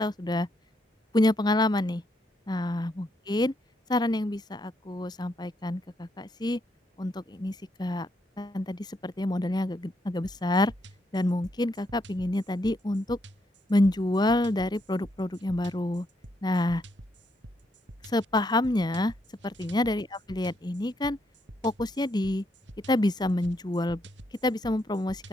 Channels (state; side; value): normal; both; correlation 0.76